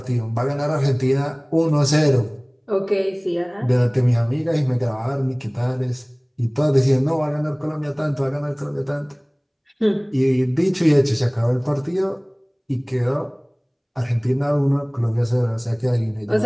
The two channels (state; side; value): identical; both; correlation 1.00